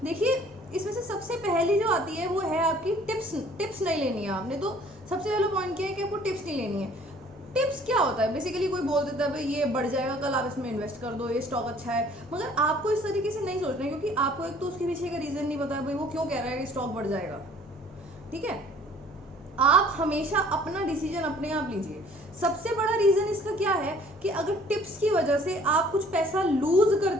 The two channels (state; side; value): normal; both; correlation 0.55